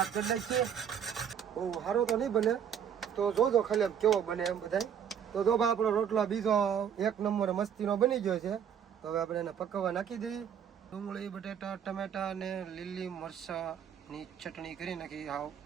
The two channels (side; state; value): left; quieter; 8.4 dB